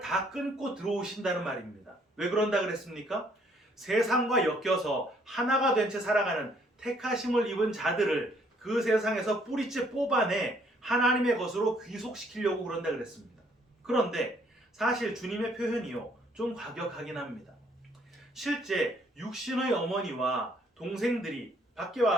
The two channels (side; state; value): both; normal; correlation 0.65